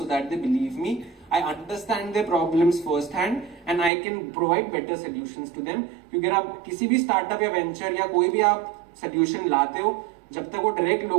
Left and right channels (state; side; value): drops out; left; at 3.9 s